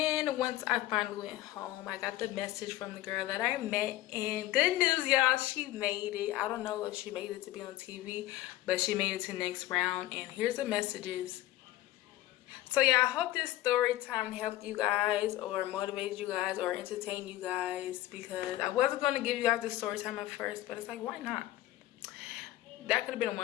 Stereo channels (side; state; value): right; quieter; 15.6 dB